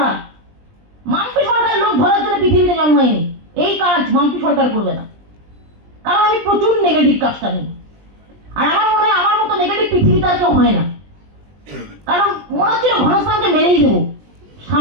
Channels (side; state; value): left; late; 20 ms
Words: মাম্পি সরকার লোক ধরার জন্য পৃথিবীতে জন্মায়নি, এই কাজ মাম্পি সরকার করবে না, কারণ আমি প্রচুর নেগেটিভ কাজটা নিই। আর আমার মনে হয় আমার মতো নেগেটিভ পৃথিবীতে আর কেউ হয় না, কারণ মনে হচ্ছিল ঘনশ্যামকে মেরেই দেবো